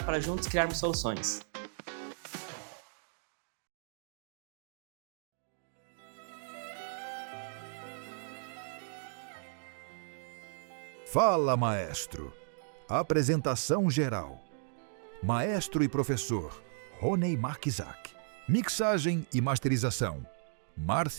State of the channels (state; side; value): silent; left; digital silence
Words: para juntos criarmos soluções. Fala, maestro. Apresentação geral. Maestro e professor Ronei Markizak. Mixagem e masterização